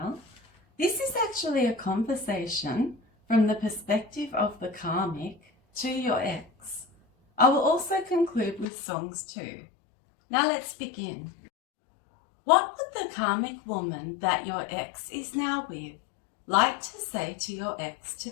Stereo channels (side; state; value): right; drops out; at 8.7 s